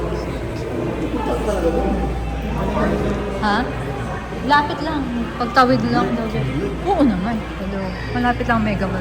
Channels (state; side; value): identical; both; correlation 1.00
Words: Ha? Lapit lang. Pagtawid lang daw dyan. Oo naman. Hello. Malapit lang Mega